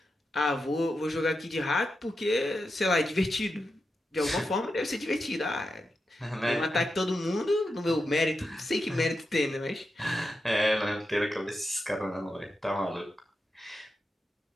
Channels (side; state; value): both; normal; correlation 0.88